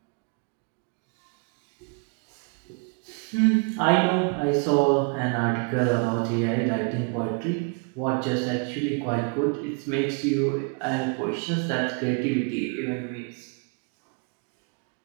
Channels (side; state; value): left; quieter; 36.6 dB